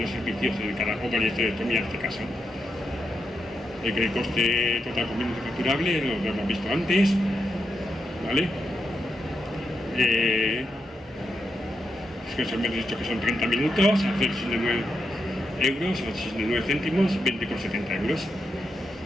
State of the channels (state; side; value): normal; both; correlation 0.84